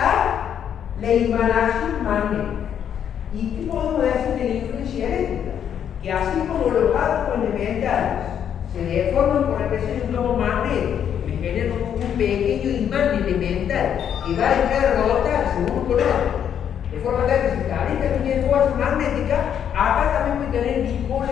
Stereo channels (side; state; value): right; quieter; 8.9 dB